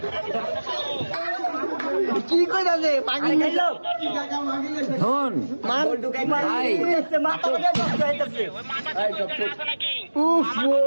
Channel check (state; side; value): inverted; both; correlation -1.00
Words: কি কইতাছে পাগল খাইলো শোন ভাই, মাথা লাগা নষ্ট হইতাছে উফ